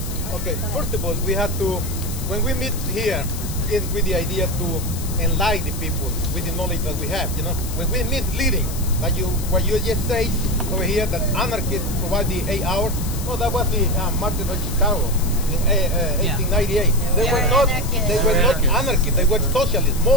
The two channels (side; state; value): left; noise; hiss, 11 dB below the sound